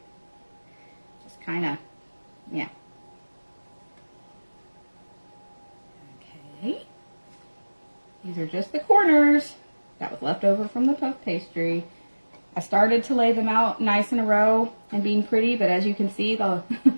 just kind of, yeah. Okay, these are just the corners that was left over from the puff pastry. I started to lay them out nice in a row and being pretty, but as you can see, the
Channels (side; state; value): both; inverted; correlation -1.00